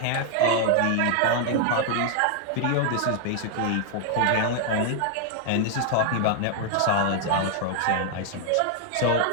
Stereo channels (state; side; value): different; both; correlation 0.00